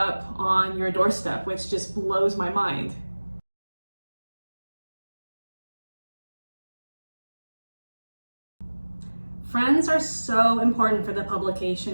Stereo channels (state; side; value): inverted; both; correlation -1.00